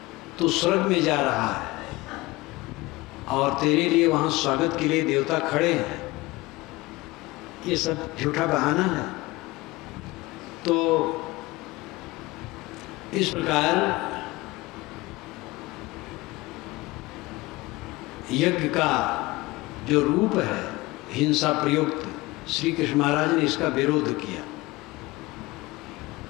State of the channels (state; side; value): quieter; right; 20.8 dB